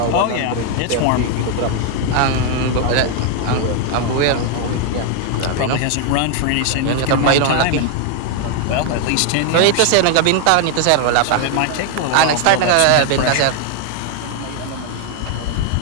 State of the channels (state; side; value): different; both; correlation 0.00